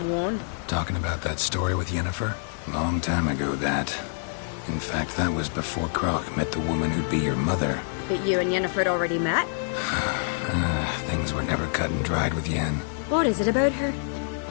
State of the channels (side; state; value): right; silent; 61 dB below the other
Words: Talking about that story with Yennefer? Long time ago, that. In fact, that was before Croc met the woman who'd be your mother. But you and Yennefer had already met? Things were never cut and dried with Yen. What is it about her?